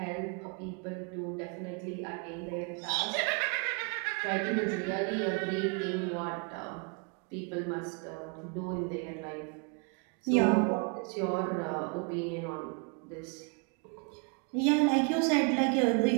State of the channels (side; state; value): left; quieter; 35.5 dB